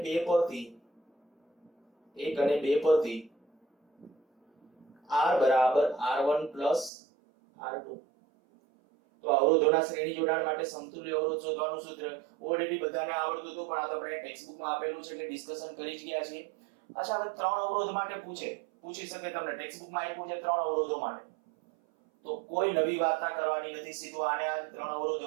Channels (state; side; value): drops out; left; at 6.9 s